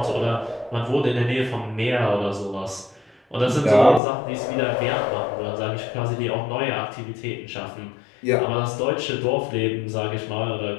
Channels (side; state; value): right; drops out; at 4.0 s